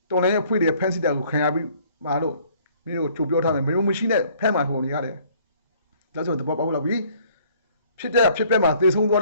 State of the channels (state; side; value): inverted; both; correlation -0.59